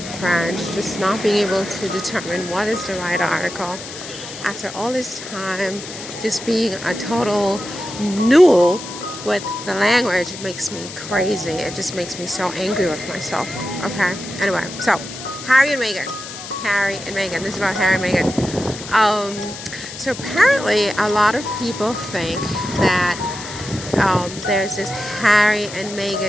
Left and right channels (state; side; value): noise; left; hiss, 11 dB below the sound